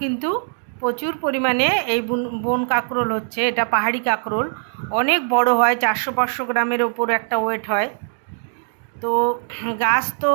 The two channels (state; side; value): silent; left; digital silence